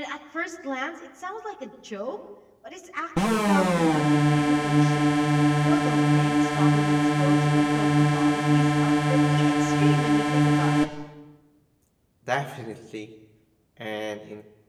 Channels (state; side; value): identical; both; correlation 1.00